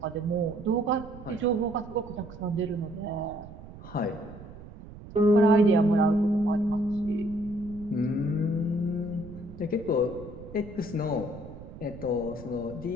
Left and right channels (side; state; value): right; noise; rumble, 15 dB below the sound